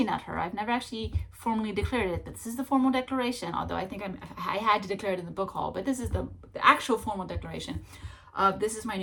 at her. I've never actually formally declared it, but this is the formal declaration, although I think I had to declare it in the book haul, but this is the actual formal declaration of this is my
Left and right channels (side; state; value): both; identical; correlation 1.00